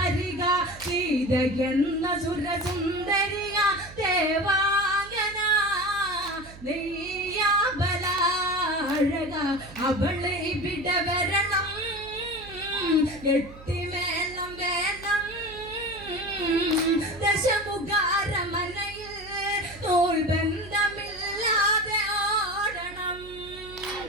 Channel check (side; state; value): right; noise; hum, 18 dB below the sound